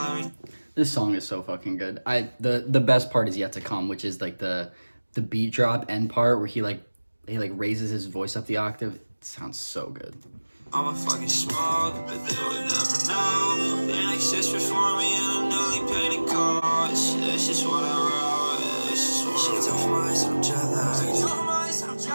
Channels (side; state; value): both; inverted; correlation -1.00